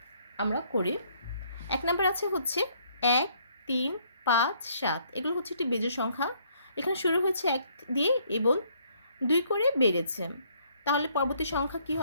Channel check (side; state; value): both; inverted; correlation -0.66